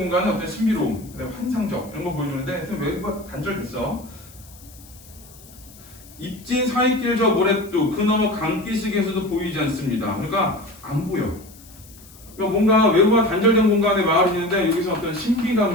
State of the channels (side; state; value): left; noise; hiss, 22 dB below the sound